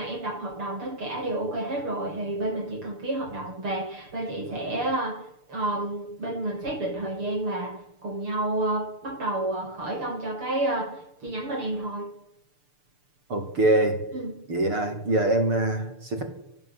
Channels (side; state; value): left; late; 6.8 ms